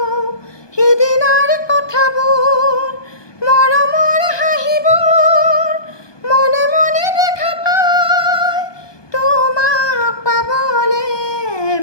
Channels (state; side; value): late; right; 1.2 ms